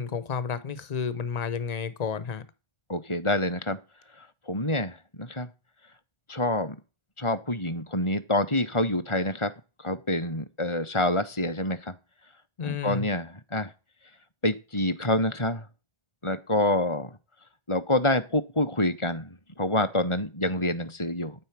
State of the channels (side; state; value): right; late; 1.4 ms